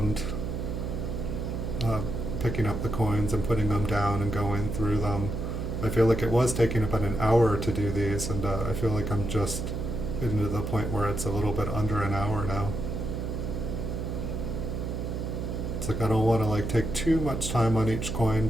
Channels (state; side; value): noise; right; hum, 3 dB below the sound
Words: picking up the coins and putting them down and going through them. I feel like it was taking about an hour to do these, and I feel like I'm just getting to the point where it's a little bit under an hour now. It's like I don't want to like take too much time on each coin,